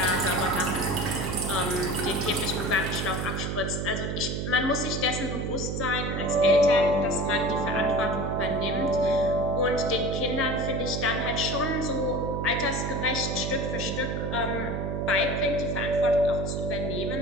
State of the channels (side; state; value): right; noise; hum, 2 dB below the sound